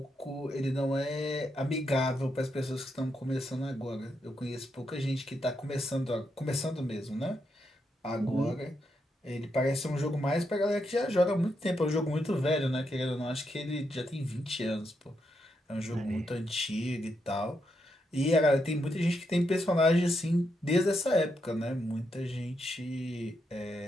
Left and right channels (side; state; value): both; normal; correlation 0.81